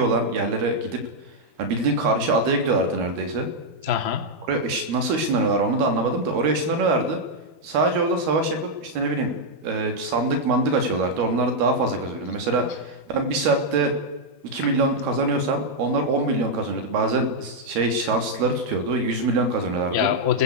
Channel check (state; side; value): late; left; 13 ms